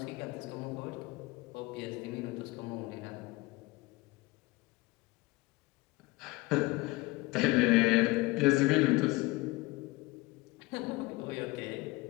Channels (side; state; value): right; quieter; 22.2 dB